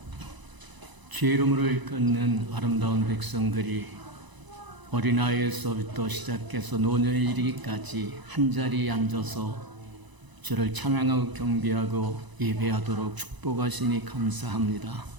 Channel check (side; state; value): left; late; 1.0 ms